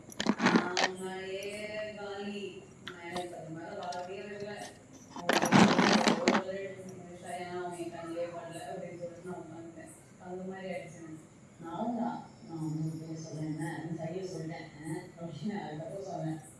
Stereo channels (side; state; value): both; identical; correlation 1.00